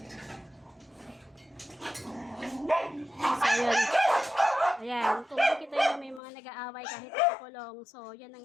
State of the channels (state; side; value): drops out; right; at 6.2 s